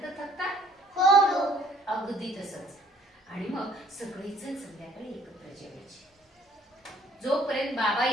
थकतात. हो. अगदी तसंच. आणि मग सगळेजण संध्याकाळी एकत्र जेवायचे. जोपर्यंत बाबा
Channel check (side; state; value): both; normal; correlation 0.58